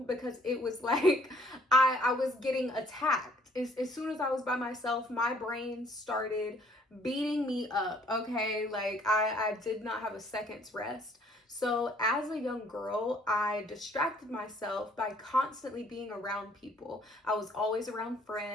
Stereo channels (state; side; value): normal; both; correlation 0.61